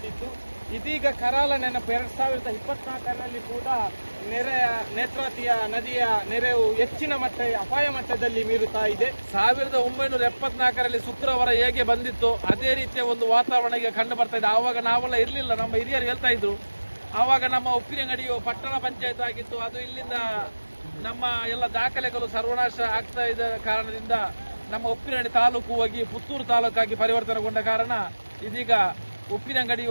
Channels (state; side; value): inverted; both; correlation -1.00